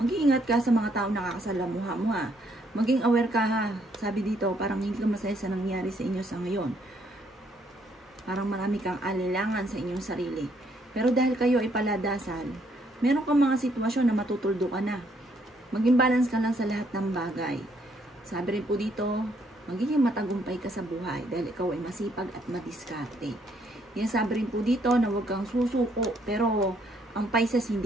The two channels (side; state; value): both; normal; correlation 0.70